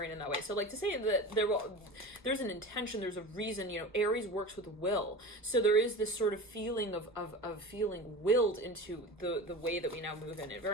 in that way. So like to say that there's an intention, there's a reason, Aries works with will. So there is this sort of feeling of feeling willed into the way that we now move in it.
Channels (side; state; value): both; normal; correlation 0.32